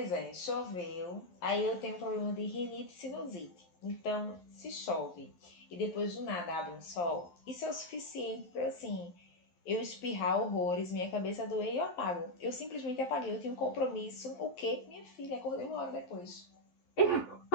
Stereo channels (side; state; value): right; late; 11 ms